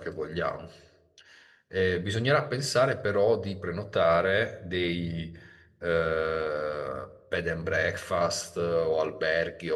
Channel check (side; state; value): both; identical; correlation 1.00